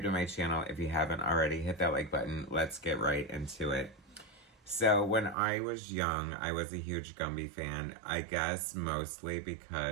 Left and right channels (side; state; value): left; drops out; at 5.4 s